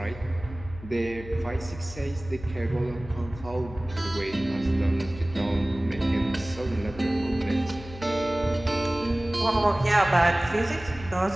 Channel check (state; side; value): noise; left; hum, 15 dB below the sound